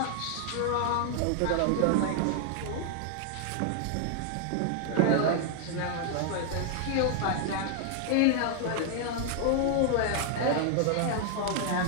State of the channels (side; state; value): both; different; correlation 0.00